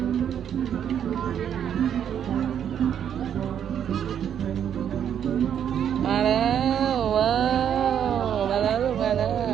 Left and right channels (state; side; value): quieter; left; 9.0 dB